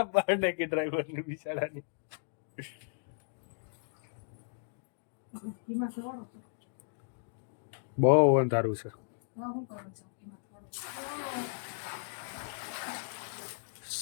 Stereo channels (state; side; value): silent; right; digital silence